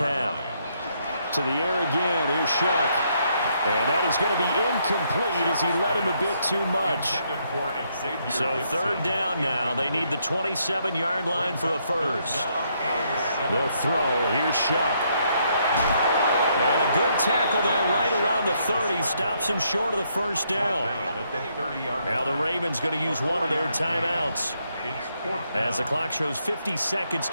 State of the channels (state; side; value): inverted; both; correlation -0.74